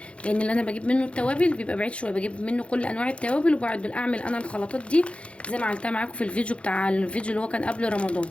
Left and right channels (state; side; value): late; right; 0.060 ms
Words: لان اللي انا بجيب منه التوابل بيبقى بعيد شويه، بجيب منه كل انواع التوابل، وبعد اعمل انا الخلطات دي زي ما عملتها معاكم في الفيديو اللي هو كان قبل رمضان.